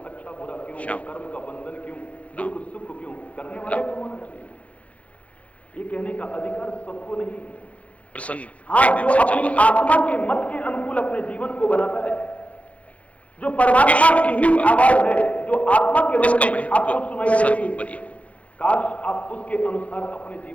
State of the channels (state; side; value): late; right; 0.065 ms